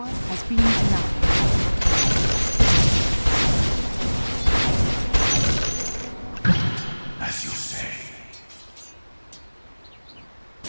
has been denied. as you say.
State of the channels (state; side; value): inverted; both; correlation -1.00